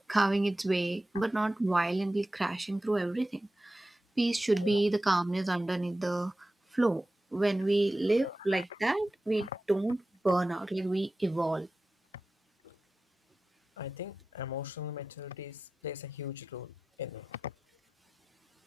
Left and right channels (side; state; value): both; normal; correlation 0.94